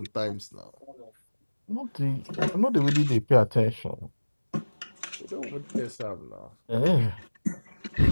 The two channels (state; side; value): inverted; both; correlation -1.00